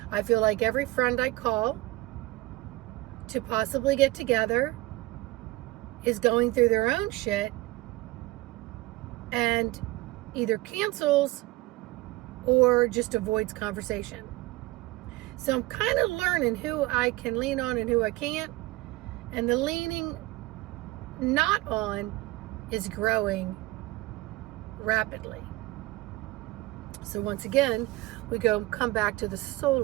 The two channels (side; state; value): left; quieter; 20.0 dB